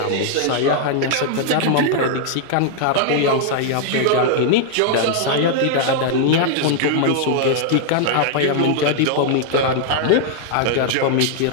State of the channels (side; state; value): both; different; correlation -0.01